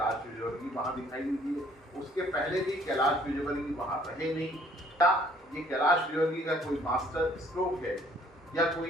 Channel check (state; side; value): normal; both; correlation 0.60